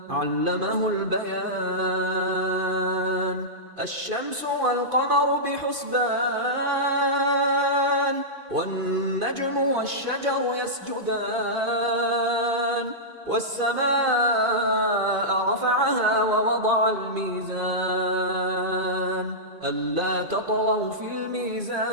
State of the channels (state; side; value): late; left; 2.5 ms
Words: علمه البيان الشمس والقمر بحسبان والنجم والشجر يسجدان والسماء رفعها ووضع الميزان ألا تطغوا في الميزان